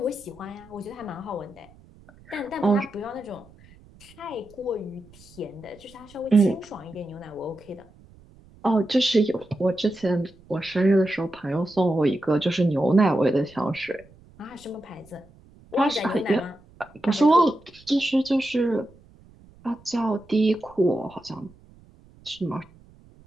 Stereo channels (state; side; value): noise; right; rumble, 25 dB below the sound